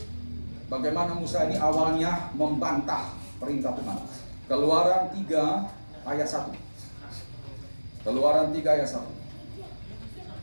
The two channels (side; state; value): both; inverted; correlation -1.00